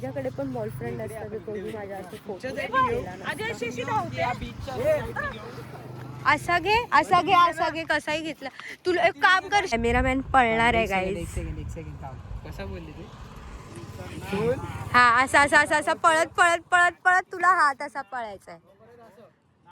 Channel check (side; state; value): both; identical; correlation 1.00